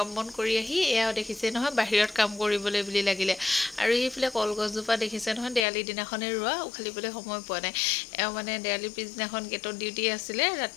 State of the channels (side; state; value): right; drops out; at 5.7 s